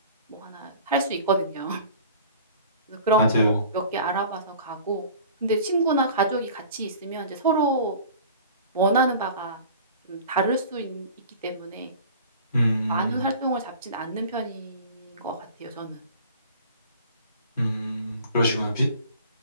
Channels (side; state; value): both; inverted; correlation -0.43